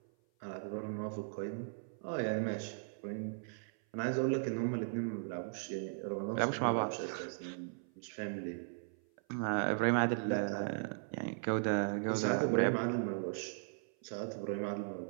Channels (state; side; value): silent; left; 53 dB below the other